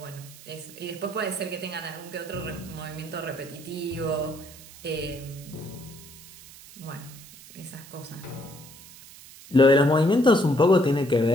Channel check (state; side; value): noise; right; hiss, 19 dB below the sound